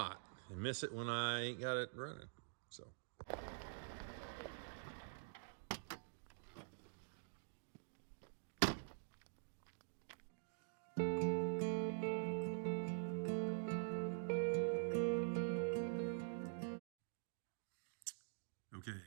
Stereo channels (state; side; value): silent; left; digital silence